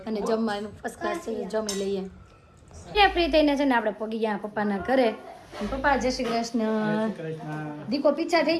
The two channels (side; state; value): both; identical; correlation 1.00